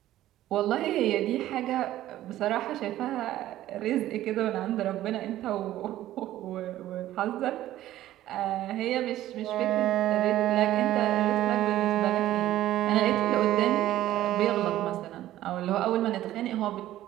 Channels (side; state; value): left; quieter; 13.9 dB